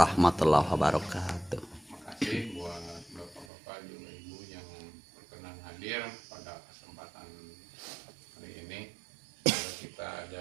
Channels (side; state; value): left; drops out; at 3.5 s